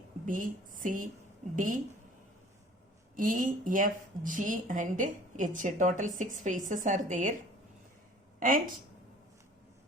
B, C, D, E, F, G and H. Total 6 faces are there. And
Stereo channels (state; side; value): normal; both; correlation 0.49